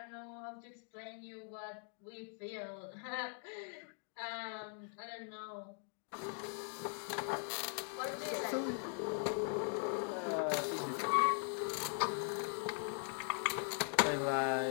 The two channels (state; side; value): silent; right; 50 dB below the other